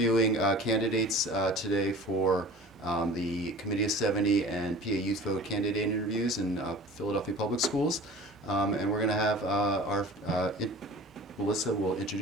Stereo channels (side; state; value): both; normal; correlation 0.41